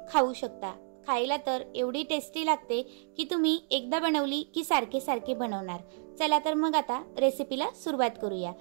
खाऊ शकता। खायला तर एवढी टेस्टी लागते की तुम्ही एकदा बनवली की सारखे सारखे बनवणार। चला तर मग आता रेसिपीला सुरुवात करूया।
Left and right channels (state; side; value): silent; left; digital silence